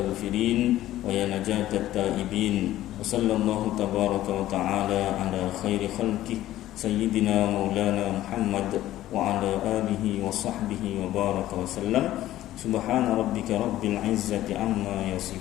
wa ya najatat taibin. Wa sallallahu tabaraka wa ta'ala ala khairi khalqih sayyidina maulana Muhammad wa ala alihi wa sahbihi wa baraka wa sallam. Subhana rabbika rabbil izzati amma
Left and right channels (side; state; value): right; quieter; 14.2 dB